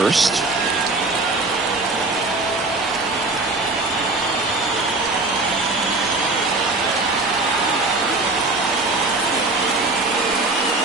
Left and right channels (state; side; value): quieter; left; 3.3 dB